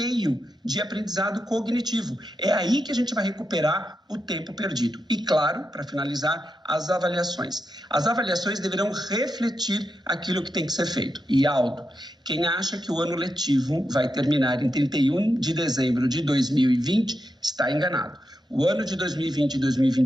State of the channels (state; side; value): normal; both; correlation 0.86